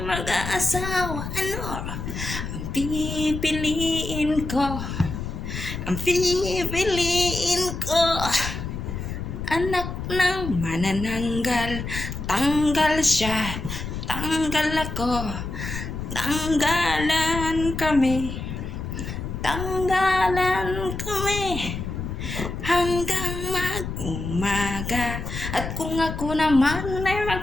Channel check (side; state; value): left; noise; rumble, 6 dB below the sound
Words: mag-aasawa, ano ang pipiliin ko? Ang pipiliin ko, anak ng manananggal. Tanggal siya, tanggal ako, tanggalan kami, tanggalan kami, hanggang mag-umaga. At kung ako naman ay